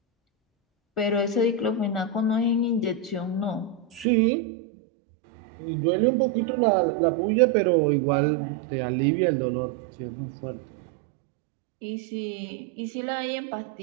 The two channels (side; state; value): left; drops out; at 4.0 s